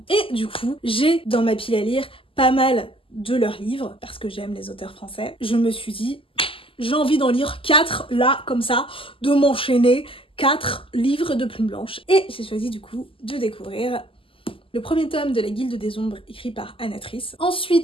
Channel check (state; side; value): late; right; 0.26 ms